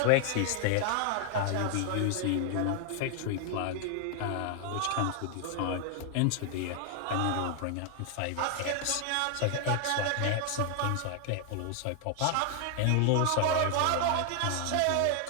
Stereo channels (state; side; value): different; both; correlation 0.00